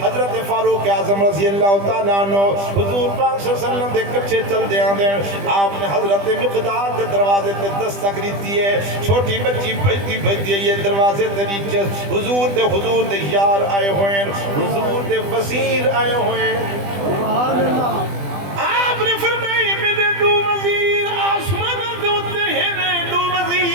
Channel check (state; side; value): late; left; 20 ms